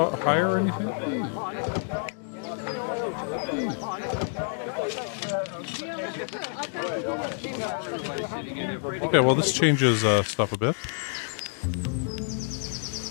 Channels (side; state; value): right; silent; 60 dB below the other